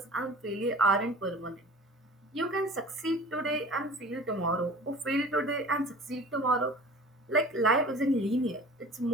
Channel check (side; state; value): both; normal; correlation 0.42